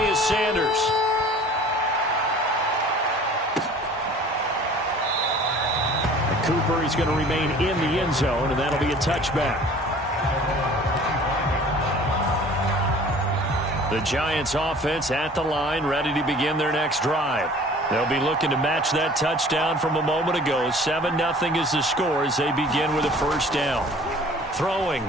is Sanders. Cooper is going to remain in the end zone, and that'll be a touchback. The Giants offense at the line, ready to begin their next drive. They'll be looking to match that touchdown from a moment ago. 7-0 is the score as they begin with a first down.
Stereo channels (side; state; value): both; normal; correlation 0.48